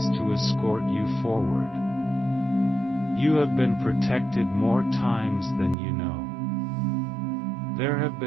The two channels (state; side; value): drops out; left; at 5.8 s